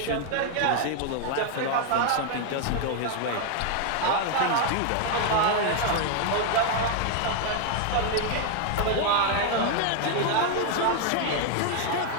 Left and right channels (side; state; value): both; different; correlation 0.00